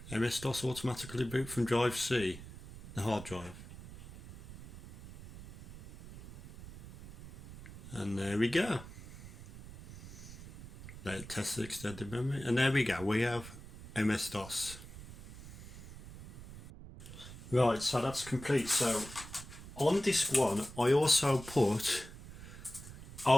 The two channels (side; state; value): right; noise; rumble, 15 dB below the sound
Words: MS-DOS automatically boot from drive C, the hard drive. And there we go. Let test the extended memory, and there we go, we have MS-DOS. Right, so that's complete. So on disk 1 I also put